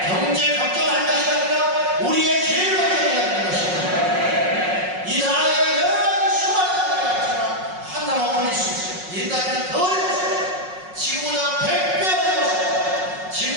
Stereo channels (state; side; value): late; left; 5.5 ms